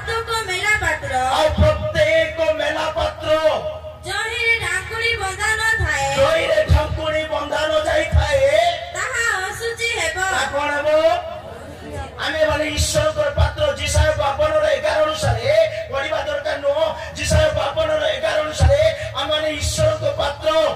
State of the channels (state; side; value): identical; both; correlation 1.00